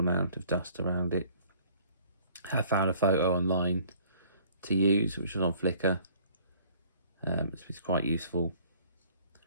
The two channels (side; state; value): both; inverted; correlation -0.56